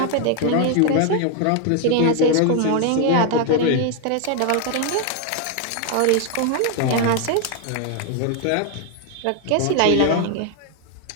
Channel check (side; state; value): both; different; correlation 0.00